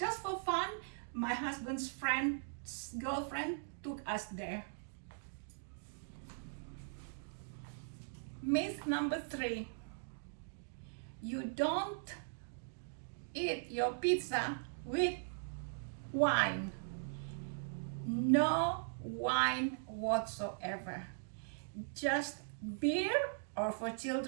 for fun. My husband's friend's girlfriend took us there. Myth number 3. You don't eat your pizza with wine. No wine whatsoever. Just beer, or for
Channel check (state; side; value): silent; left; digital silence